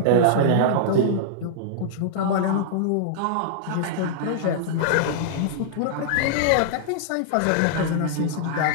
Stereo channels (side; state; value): both; different; correlation -0.02